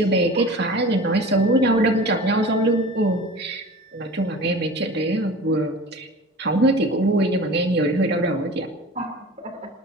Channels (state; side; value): normal; both; correlation 0.38